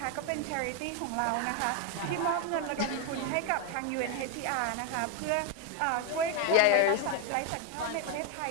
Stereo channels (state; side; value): different; both; correlation 0.01